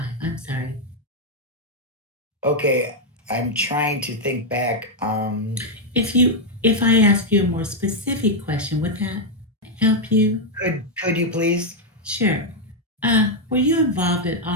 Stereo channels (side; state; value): both; normal; correlation 0.00